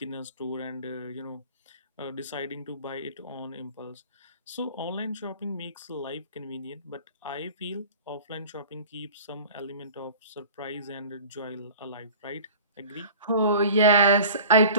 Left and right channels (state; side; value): inverted; both; correlation -0.42